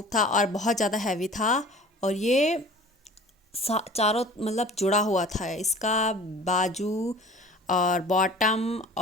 था और बहुत ज़्यादा हैवी था। और ये चारों मतलब जुड़ा हुआ था इसका, बाजू और बॉटम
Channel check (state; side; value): normal; both; correlation 0.44